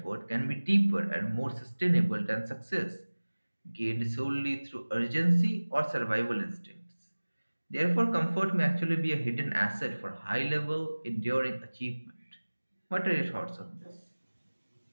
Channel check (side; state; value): both; inverted; correlation -1.00